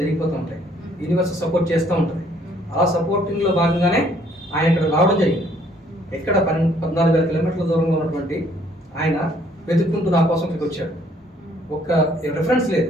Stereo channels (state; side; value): normal; both; correlation 0.63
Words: జరిగిపోతూ ఉంటాయి. యూనివర్స్ సపోర్ట్ చేస్తూ ఉంటుంది. అలా సపోర్టింగ్లో భాగంగానే ఆయన ఇక్కడ రావడం జరిగింది. ఎక్కడ 14,000 కిలోమీటర్ల దూరంలో ఉన్నటువంటి ఆయన వెతుక్కుంటూ నా కోసం ఇక్కడికి వచ్చాడు. ఒక్క రెఫరెన్స్ లేదు,